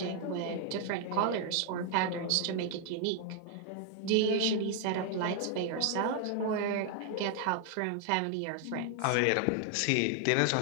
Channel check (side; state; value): both; different; correlation 0.00